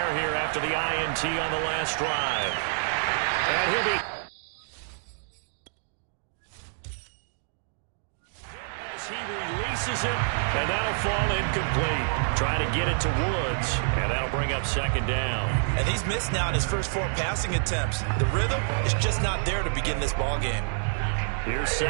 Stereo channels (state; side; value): silent; left; digital silence